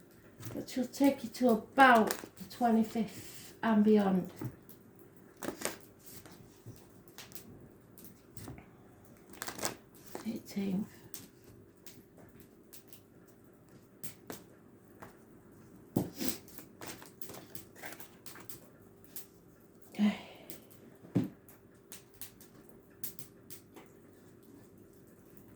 which will take you to about the 25th and beyond. Okay.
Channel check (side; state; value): both; identical; correlation 1.00